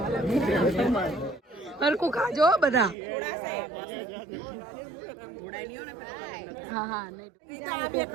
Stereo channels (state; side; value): drops out; left; at 3.0 s